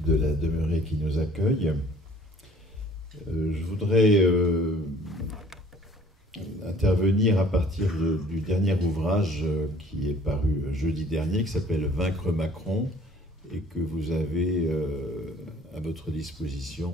de la Demeurée qui nous accueille. Je voudrais intervenir à partir du dernier ouvrage qui est paru jeudi dernier, qui s'appelle « Vaincre Macron » et que vous avez à votre disposition,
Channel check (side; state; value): both; normal; correlation 0.54